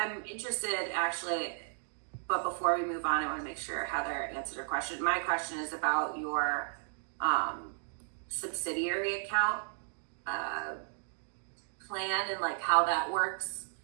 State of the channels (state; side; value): silent; left; digital silence